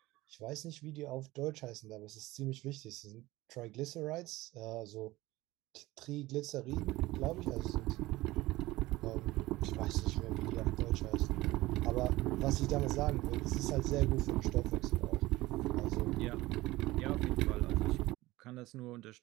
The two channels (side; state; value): left; quieter; 18.7 dB